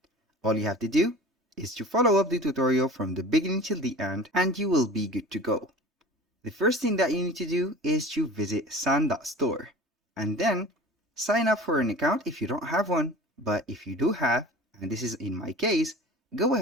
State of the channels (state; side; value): normal; both; correlation 0.40